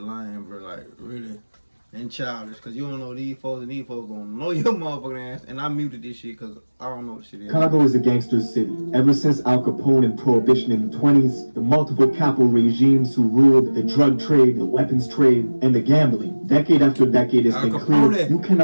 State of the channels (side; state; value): both; inverted; correlation -1.00